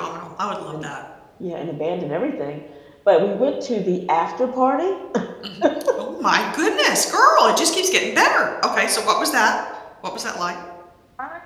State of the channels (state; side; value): identical; both; correlation 1.00